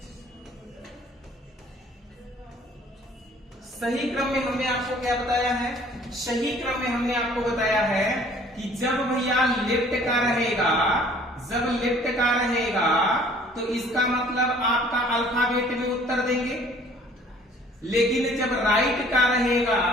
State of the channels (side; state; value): both; normal; correlation 0.54